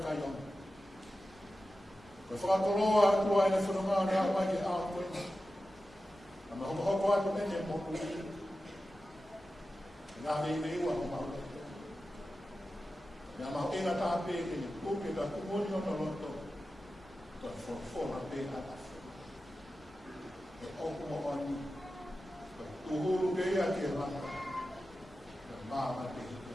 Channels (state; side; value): normal; both; correlation 0.93